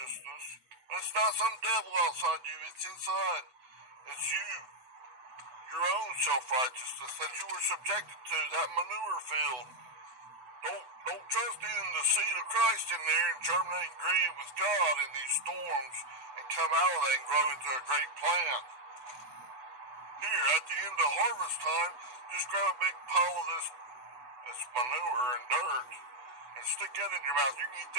And it's not some devil outside you, it's inside. It's you. Your own self-righteousness that you were subjected to, that manure field. Don't trust in the seed of Christ in there and germinate and grieve with God in these storms and come out of that and grow into a great plant. Here, at the end of harvest time, just grab a big pile of this manure and dirt and stick that in your mouth. You can eat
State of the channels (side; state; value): left; late; 7.9 ms